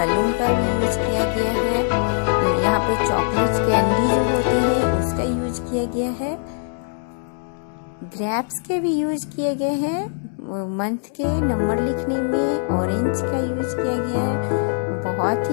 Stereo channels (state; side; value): silent; right; digital silence